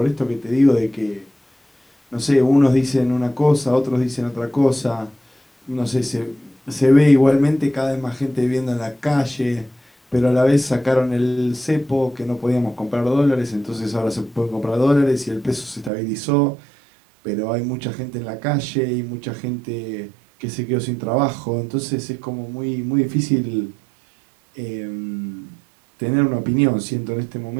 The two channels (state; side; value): drops out; left; at 15.9 s